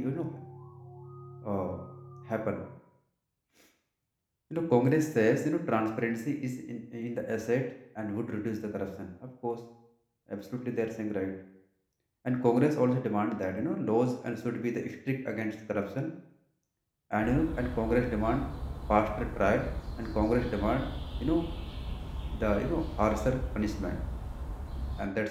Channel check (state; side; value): identical; both; correlation 1.00